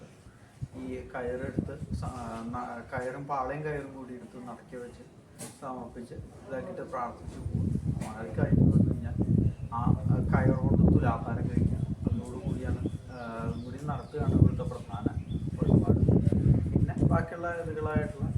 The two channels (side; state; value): both; identical; correlation 1.00